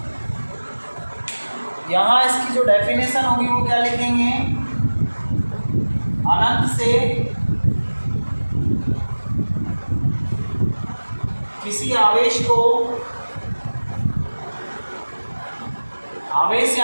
यहाँ इसकी जो डेफिनेशन होगी वो क्या लिखेंगे। अनंत से किसी आवेश को, आवेश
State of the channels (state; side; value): inverted; both; correlation -1.00